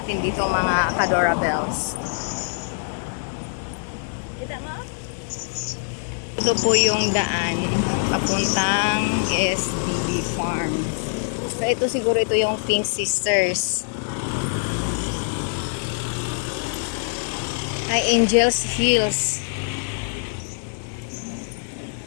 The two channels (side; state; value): right; silent; digital silence